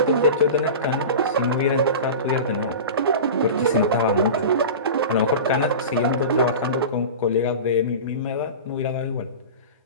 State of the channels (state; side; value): inverted; both; correlation -0.30